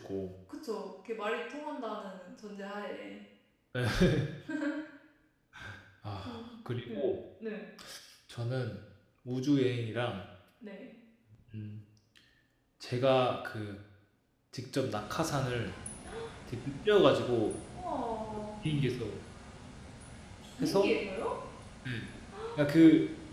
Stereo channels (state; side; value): identical; both; correlation 1.00